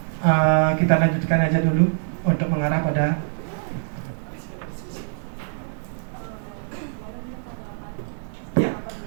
kita lanjutkan aja dulu untuk mengarah pada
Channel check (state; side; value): silent; left; digital silence